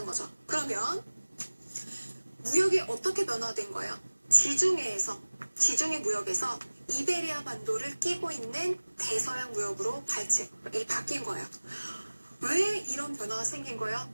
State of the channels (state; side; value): inverted; both; correlation -1.00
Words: 거죠. 그러면 무역이 어떻게 변화된 거예요? 지중해 무역에서 이베리아 반도를 끼고 있는 대서양 무역으로 바뀐 거예요. 왜 이런 변화가 생긴 거예요?